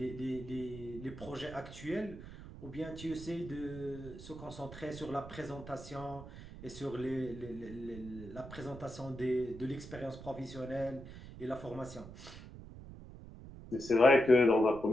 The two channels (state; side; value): noise; right; rumble, 14 dB below the sound